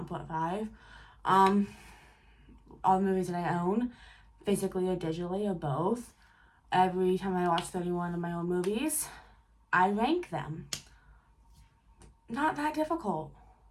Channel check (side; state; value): both; identical; correlation 1.00